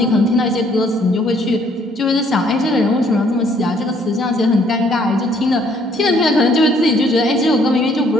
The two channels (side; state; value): both; normal; correlation 0.64